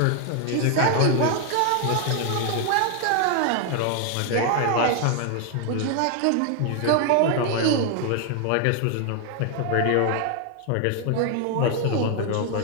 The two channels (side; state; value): both; different; correlation 0.00